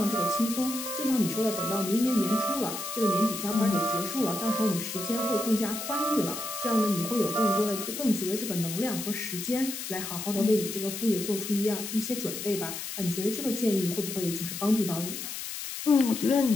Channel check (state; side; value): noise; left; hiss, 7 dB below the sound